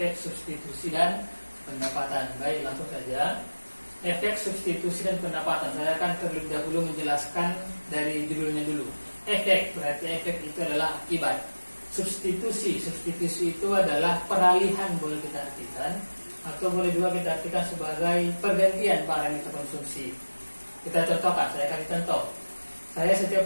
substitusi dan pendapatan. Baik, langsung saja. Efek substitusi dan pendapatan. Saya akan terlebih dahulu menjelaskan dari judulnya dulu. Efek, berarti efek itu adalah akibat. Substitusi itu adalah peralihan, boleh kita artikan, atau boleh juga kita artikan sebagai pergantian barang yang kita konsumsi. Kita contohkan, saya kasih contoh. Saya setiap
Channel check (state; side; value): inverted; both; correlation -1.00